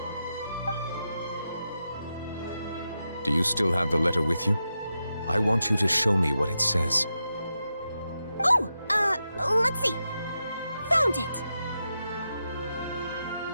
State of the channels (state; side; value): inverted; both; correlation -0.88